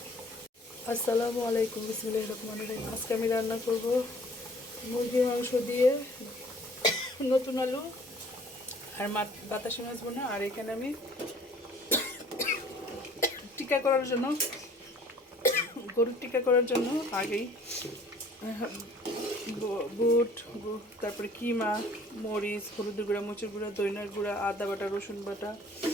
আসসালামু আলাইকুম, বিসমিল্লাহির রহমানির রহিম। আজকে আমি রান্না করব মুরগির মাংস দিয়ে নতুন আলু আর বাতাসি মাছ বোনা। আর এখানে আমি টিক্কা করার জন্য, গরুর টিক্কা করার জন্য আগেই বুট, তারপরে কিমা, মরিচ, হলুদের গুঁড়া, মরিচের গুঁড়া, দইনার গুঁড়া, আদা বাটা, রসুন বাটা,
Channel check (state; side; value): normal; both; correlation 0.53